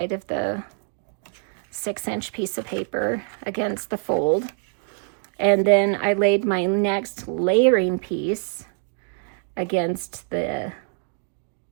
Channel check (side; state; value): left; silent; 59 dB below the other